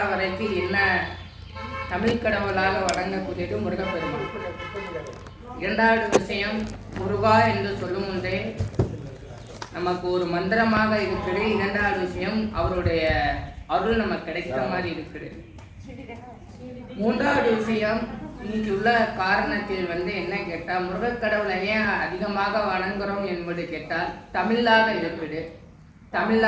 வரைக்கும் என்ன தமிழ் கடவுளாக வழங்கக்கூடியது முருகப்பெருமான். இரண்டாவது விஷயம், முருகா என்று சொல்லும் முன்பே நமக்கு ஒரு மந்திரமாக இருக்குது. இரண்டாவது விஷயம், அவருடைய அருள் நமக்கு கிடைக்கிற மாதிரி இருக்குது. மூன்றாவது விஷயம், இன்னைக்கு உள்ள காரணத்தில் என்ன கேட்டால், முருகக்கடவுளை ஏன் அதிகமாக வணங்குறோம் என்பது கேட்டால் தமிழாக இருக்குது,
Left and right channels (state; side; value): identical; both; correlation 1.00